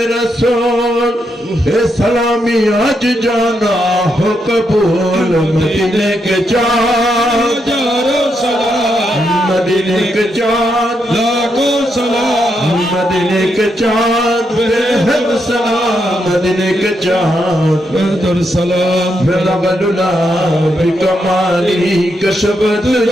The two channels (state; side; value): normal; both; correlation 0.81